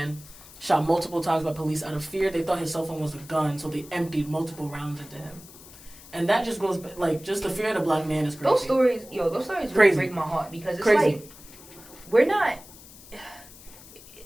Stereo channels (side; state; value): left; noise; hiss, 19 dB below the sound